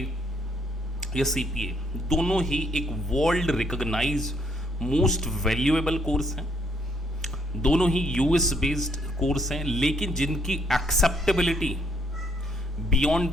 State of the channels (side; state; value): both; normal; correlation 0.70